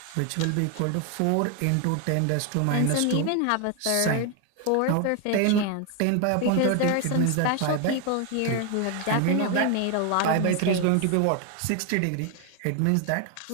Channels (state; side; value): different; both; correlation 0.01